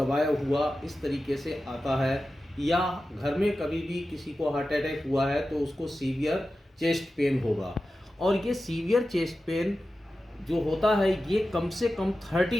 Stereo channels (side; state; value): both; normal; correlation 0.93